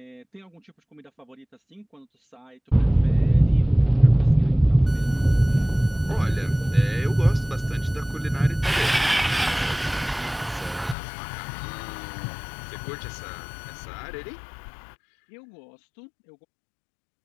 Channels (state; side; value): drops out; right; at 11.0 s